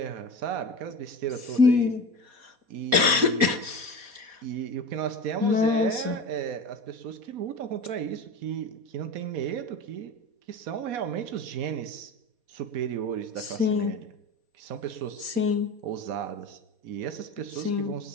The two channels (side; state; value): left; late; 4.2 ms